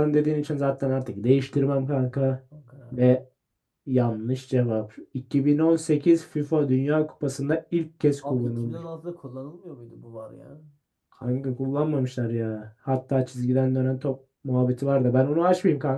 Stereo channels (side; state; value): both; identical; correlation 1.00